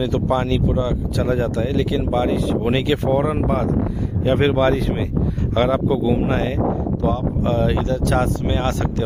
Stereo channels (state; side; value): identical; both; correlation 1.00